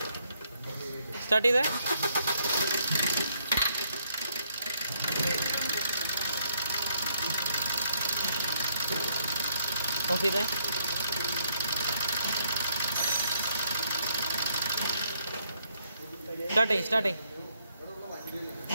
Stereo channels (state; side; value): inverted; both; correlation -0.71